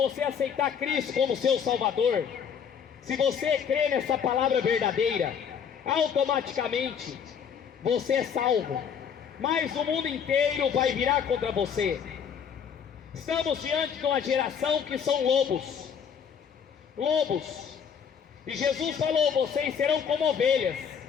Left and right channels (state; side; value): quieter; right; 7.3 dB